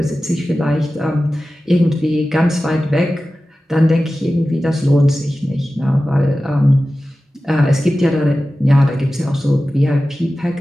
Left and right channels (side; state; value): both; normal; correlation 0.95